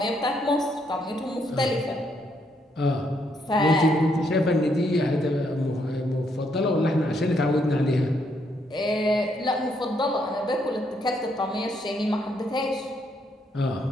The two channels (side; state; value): both; normal; correlation 0.74